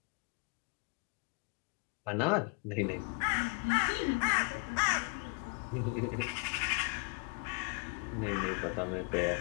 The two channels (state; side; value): quieter; right; 35.2 dB